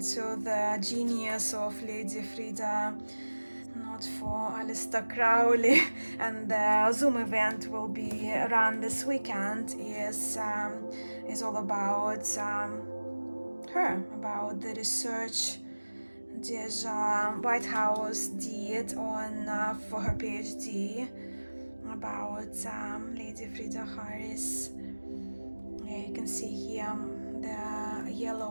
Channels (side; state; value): both; inverted; correlation -1.00